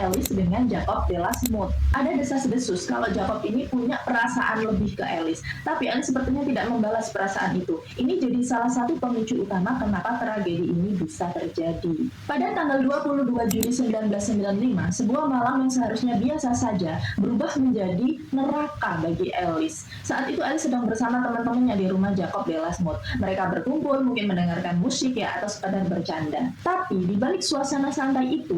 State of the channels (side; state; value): both; identical; correlation 1.00